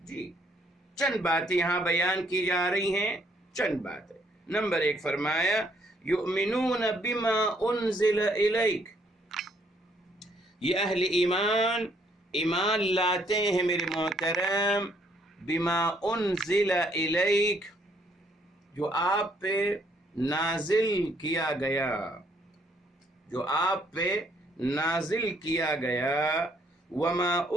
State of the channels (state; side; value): normal; both; correlation 0.68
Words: جی چند باتیں یہاں بیان کی جا رہی ہیں، چند باتیں۔ نمبر 1 فرمایا یؤمنون بما انزل الیک، یہ اہل ایمان ایمان لاتے ہیں میرے محترم بما انزل الیک، جو آپ پہ نازل کیا گیا، جو آپ پہ نازل کیا گیا، وما